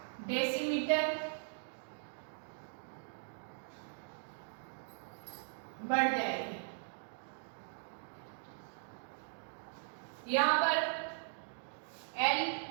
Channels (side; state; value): left; silent; digital silence